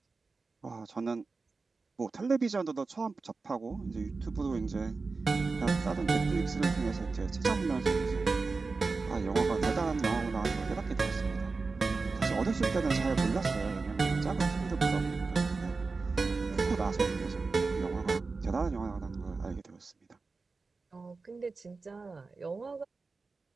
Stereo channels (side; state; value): left; quieter; 4.1 dB